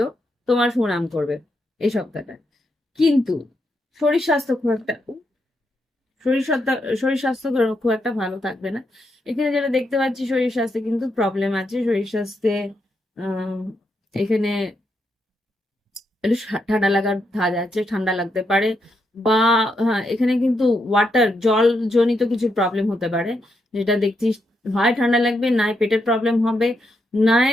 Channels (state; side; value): normal; both; correlation 0.81